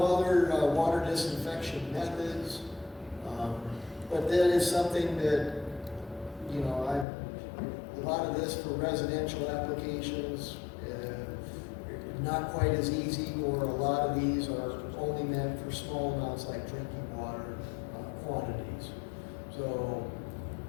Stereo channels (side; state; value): right; drops out; at 7.1 s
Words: water disinfection methods, but that is something that, you know, a lot of this for residential applications, not quite as easy, or a lot of these are only meant for small amounts like drinking water quantities. So